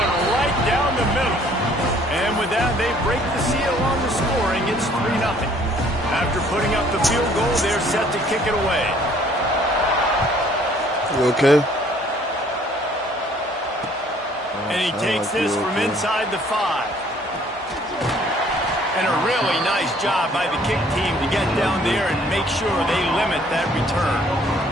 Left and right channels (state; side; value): normal; both; correlation 0.59